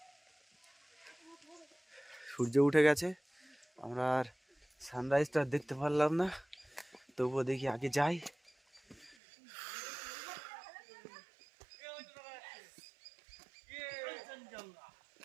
সূর্য উঠে গেছে, আমরা আর সানরাইজটা দেখতে পারলাম না, তবুও দেখি আগে যাই।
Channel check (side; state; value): left; drops out; at 9.2 s